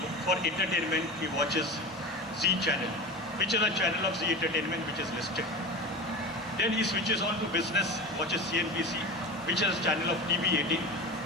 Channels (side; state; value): both; normal; correlation 0.28